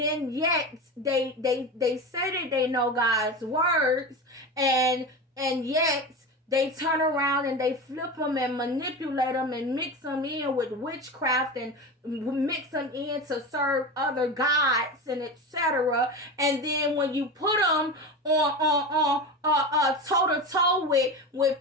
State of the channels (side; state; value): both; normal; correlation 0.25